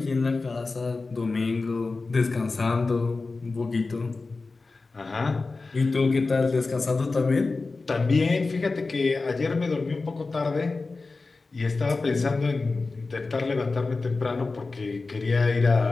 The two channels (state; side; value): quieter; right; 3.8 dB